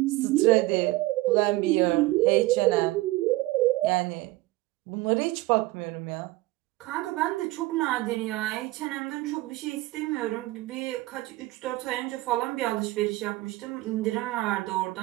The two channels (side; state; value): left; quieter; 19.4 dB